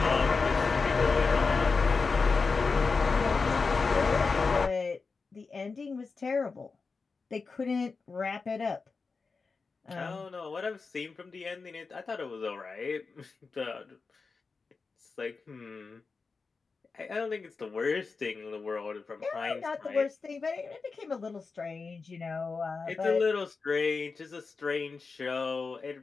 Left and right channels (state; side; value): quieter; right; 4.5 dB